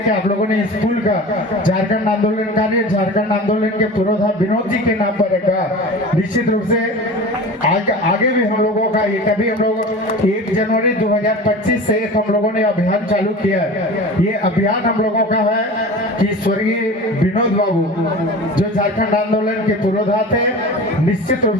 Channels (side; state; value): both; normal; correlation 0.35